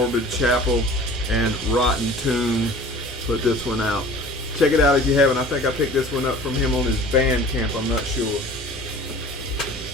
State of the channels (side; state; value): both; normal; correlation 0.44